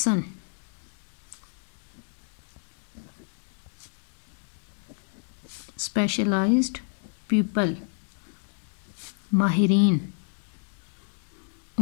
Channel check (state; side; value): silent; right; 59 dB below the other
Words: اسپیشلائزڈ پیپل ماہرین